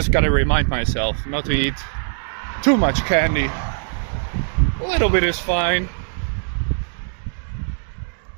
gotta remind myself not to eat too much candy. A little bit is fine.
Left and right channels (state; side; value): silent; left; digital silence